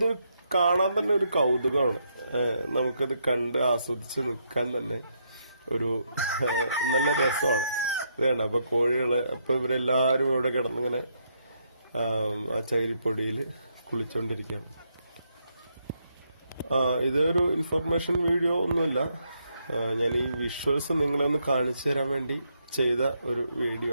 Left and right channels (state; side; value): inverted; both; correlation -0.77